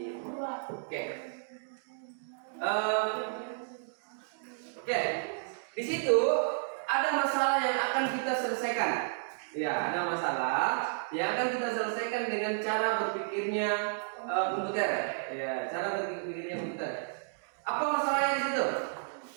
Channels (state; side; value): silent; left; digital silence